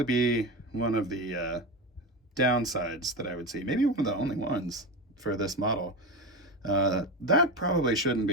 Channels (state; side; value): normal; both; correlation 0.21